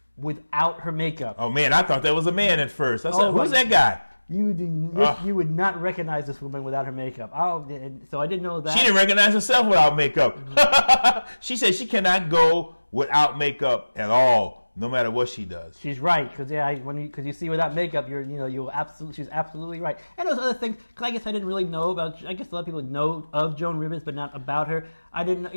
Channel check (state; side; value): inverted; both; correlation -1.00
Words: without her makeup. Oh man, I thought that was a man at first. I said, "Who's that guy?" You would not recognize this woman without her makeup. So I didn't know that. She didn't recognize herself without makeup. Mm-hmm. She said she cannot go without makeup at all, no matter what she does. She's right, because you see without makeup, she's absolutely right. And those other things, because I guess I didn't really know about. I guess a lot of people know of Joan Rivers, but not about her. I didn't.